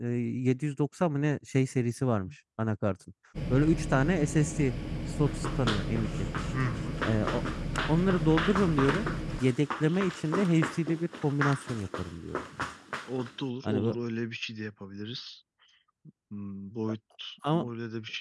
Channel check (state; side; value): identical; both; correlation 1.00